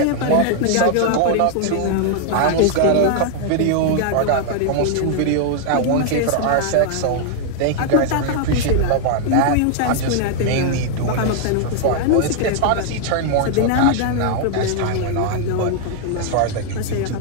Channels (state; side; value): different; both; correlation 0.00